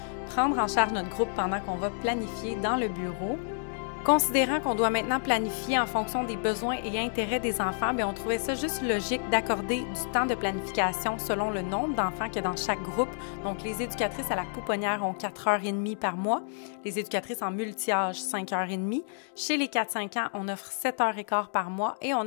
prendre en charge notre groupe pendant qu'on va planifier dans le bureau. Considérant qu'on doit maintenant planifier en fonction des besoins et intérêts des enfants, bien, on trouvait ça juste logique d'accorder du temps de planification selon le nombre d'enfants qu'il y a dans chaque groupe. Donc, les éducatrices à la pouponnière ont 4h30 par mois, les éducatrices en multi-âge 5h30. Chez les 4-5 ans, on offre 7h15 par mois et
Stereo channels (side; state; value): right; silent; digital silence